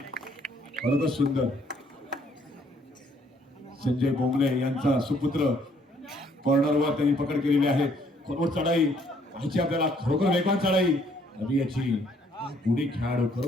बरोबर सुंदर. संजय बोंगले यांचा सुपुत्र कॉर्नरवर त्यांनी पकड केलेली आहे. खोलवर चढाई पाहिजे आपल्याला. खरोखर वेगवान चढाई. अभि याची गुणी खेळाडू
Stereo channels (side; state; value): both; normal; correlation 0.65